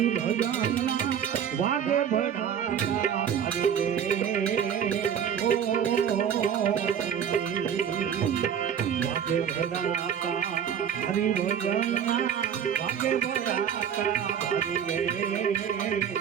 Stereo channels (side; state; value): left; quieter; 8.3 dB